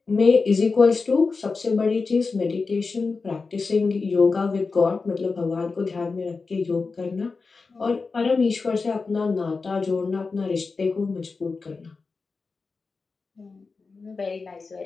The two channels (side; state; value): right; quieter; 4.3 dB